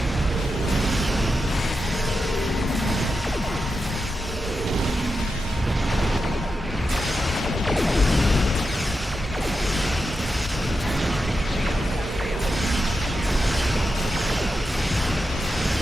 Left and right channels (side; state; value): both; normal; correlation 0.88